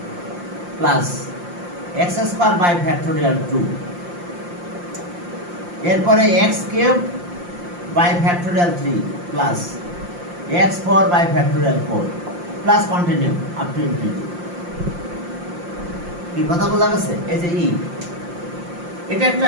plus x square by factorial 2, এরপরে x cube by factorial 3 plus x 4 by factorial 4 plus continue up to infinity. কি কথা বোঝা গেছে? এই যে ই এটা একটা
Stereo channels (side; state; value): left; late; 5.7 ms